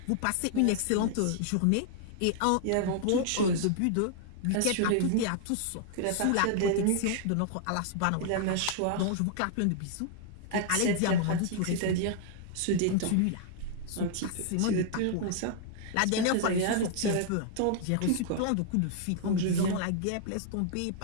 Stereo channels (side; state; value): both; different; correlation -0.01